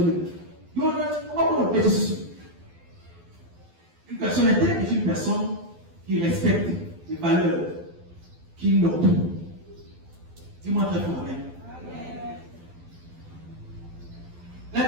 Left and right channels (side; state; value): left; late; 12 ms